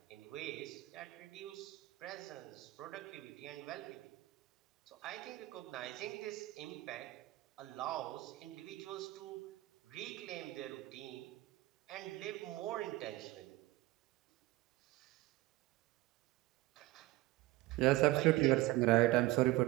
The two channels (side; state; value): left; quieter; 18.7 dB